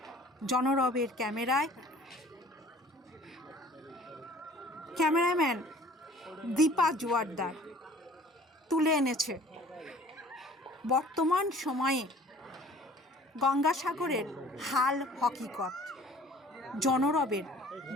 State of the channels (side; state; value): both; normal; correlation 0.50